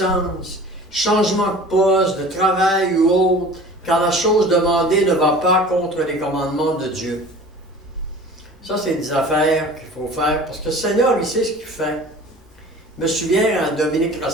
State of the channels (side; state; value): both; normal; correlation 0.42